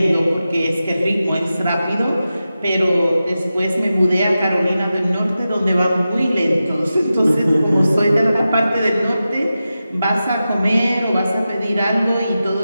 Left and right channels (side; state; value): both; inverted; correlation -0.92